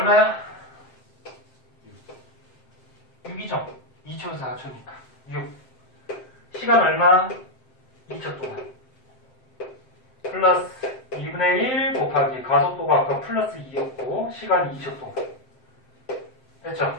6이죠? 2초에서 4초니까. 6. 시간 얼마? 2초 동안. 플러스 2분의 1 곱하기 가속도가 아까 플러스 2였고 시간이 2초 동안.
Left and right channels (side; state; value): right; late; 7.7 ms